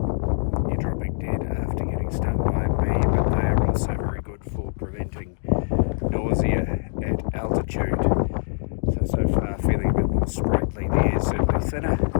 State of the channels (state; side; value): silent; right; digital silence